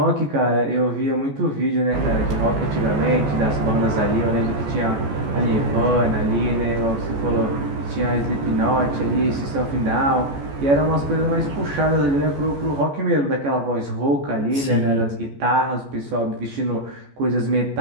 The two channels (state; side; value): late; left; 14 ms